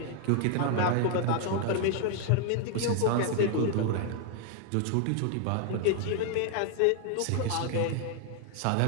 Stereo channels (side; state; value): both; different; correlation 0.01